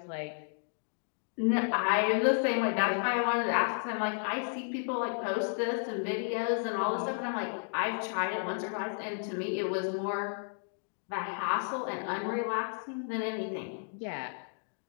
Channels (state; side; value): silent; right; 56 dB below the other